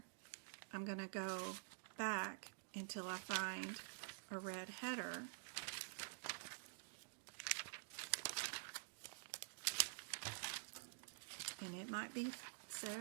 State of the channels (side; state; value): left; silent; digital silence